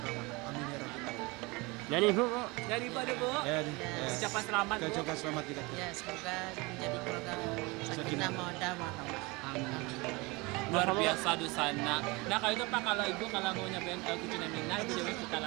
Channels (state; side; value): quieter; left; 25.3 dB